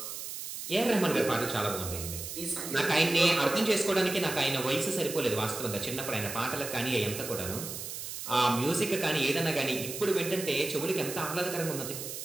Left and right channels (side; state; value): right; noise; hiss, 7 dB below the sound